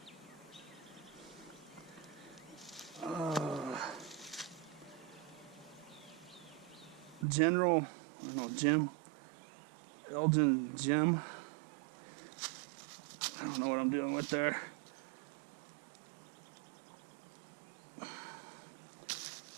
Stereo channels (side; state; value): left; drops out; at 7.2 s